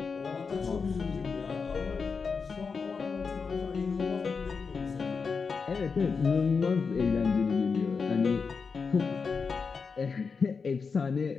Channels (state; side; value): quieter; right; 5.2 dB